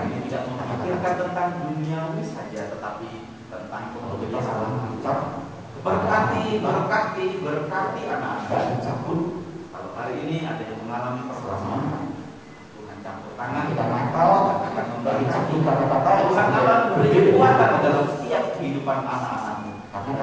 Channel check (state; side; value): identical; both; correlation 1.00